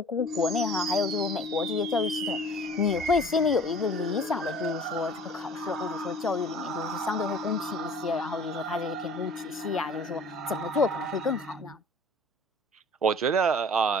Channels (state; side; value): normal; both; correlation 0.47